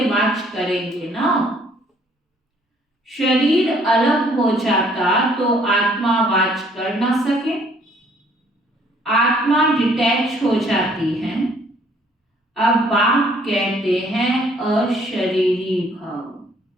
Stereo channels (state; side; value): normal; both; correlation 0.62